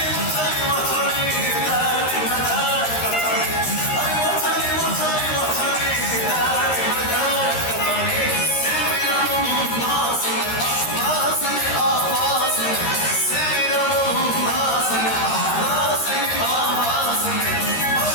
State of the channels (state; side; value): late; right; 13 ms